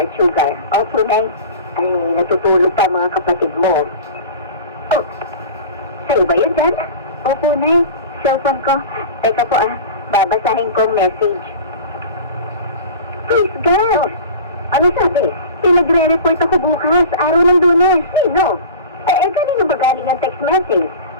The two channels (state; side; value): inverted; both; correlation -0.36